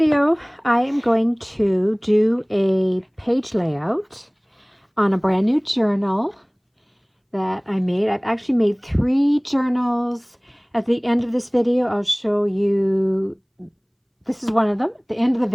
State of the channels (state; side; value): identical; both; correlation 1.00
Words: I am going to do a page layout on a brand new journal that I made. I've actually made 3 journals. At the end of this video, I'll show you, this is one of them. At the end of the